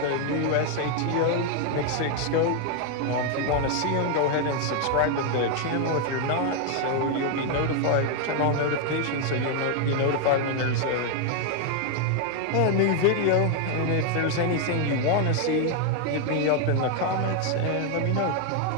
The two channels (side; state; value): both; different; correlation 0.01